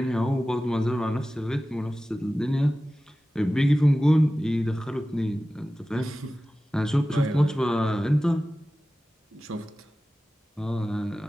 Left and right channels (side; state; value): both; normal; correlation 0.96